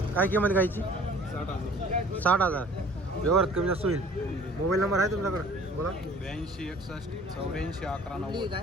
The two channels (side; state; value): both; normal; correlation 0.50